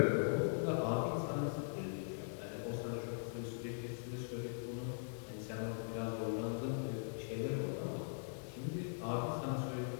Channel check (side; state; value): right; silent; digital silence